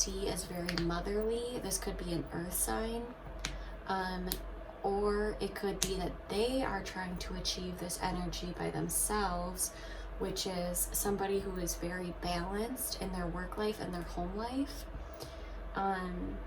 as very motherly. This could be an earth sign, or it could be that they are trying to achieve this energy by themselves, which is somebody who is very balanced in their work life and their home life.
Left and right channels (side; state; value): both; identical; correlation 1.00